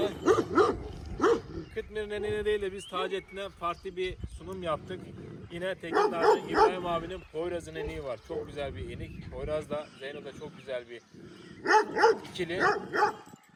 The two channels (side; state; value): both; identical; correlation 1.00